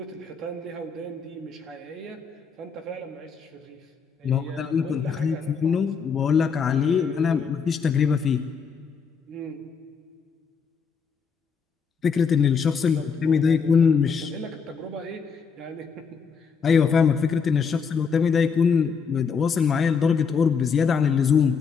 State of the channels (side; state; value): right; quieter; 6.0 dB